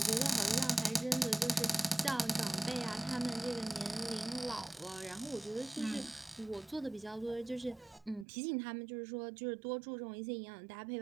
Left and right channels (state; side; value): drops out; left; at 8.2 s